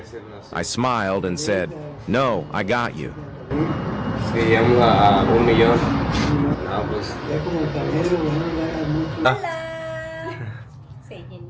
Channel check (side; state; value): both; identical; correlation 1.00